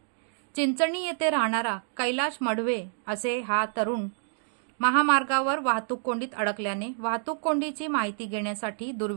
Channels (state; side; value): silent; left; digital silence